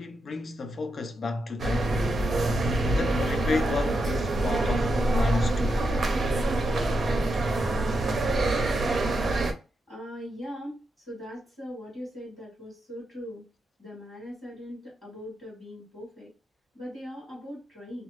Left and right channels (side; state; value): both; normal; correlation 0.85